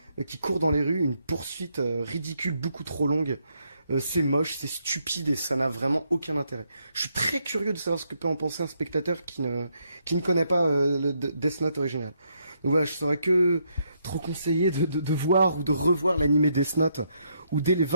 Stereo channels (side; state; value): both; inverted; correlation -0.76